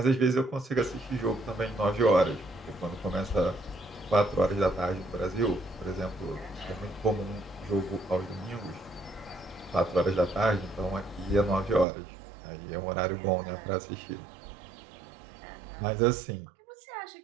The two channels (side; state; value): left; drops out; at 11.9 s